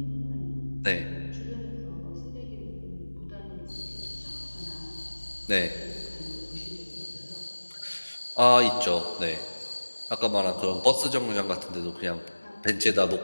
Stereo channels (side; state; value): both; inverted; correlation -1.00